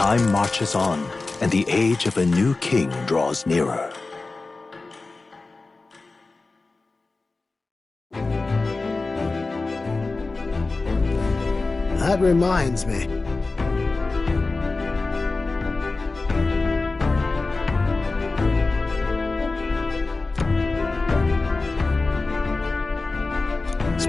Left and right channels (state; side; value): quieter; right; 3.6 dB